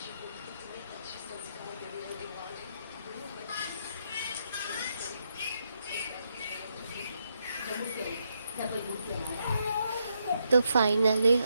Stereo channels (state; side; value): inverted; both; correlation -0.79